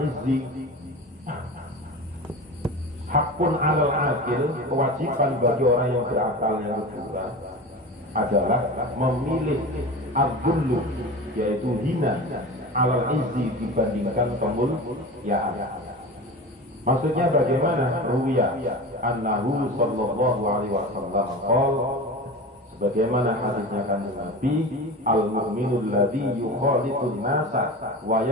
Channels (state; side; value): normal; both; correlation 0.31